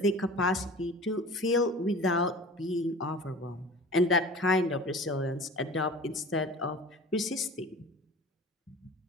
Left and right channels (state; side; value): normal; both; correlation 0.40